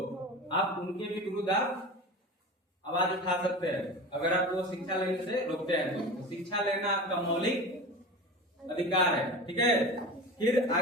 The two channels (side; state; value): both; normal; correlation 0.31